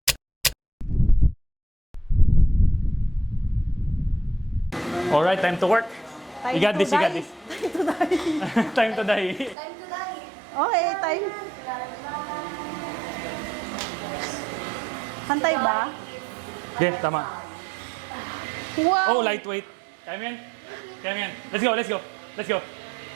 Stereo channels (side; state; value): left; drops out; at 9.6 s